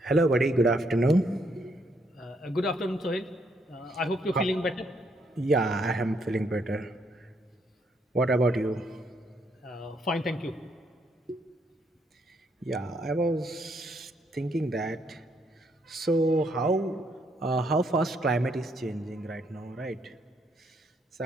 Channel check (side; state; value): both; normal; correlation 0.73